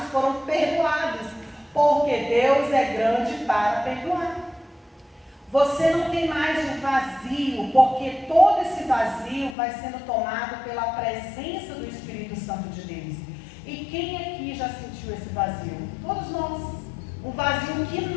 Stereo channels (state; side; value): drops out; right; at 9.6 s